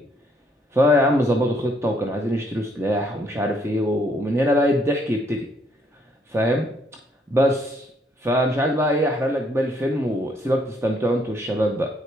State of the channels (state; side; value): normal; both; correlation 0.69